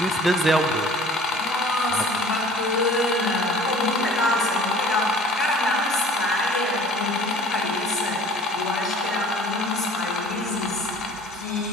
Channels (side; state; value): both; normal; correlation 0.48